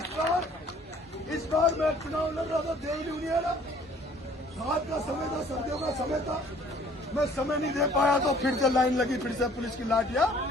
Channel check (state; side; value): normal; both; correlation 0.56